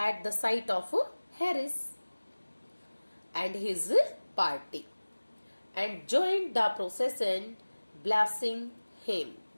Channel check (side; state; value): both; inverted; correlation -1.00